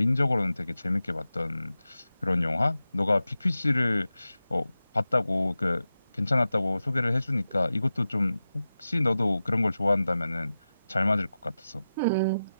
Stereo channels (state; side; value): inverted; both; correlation -0.93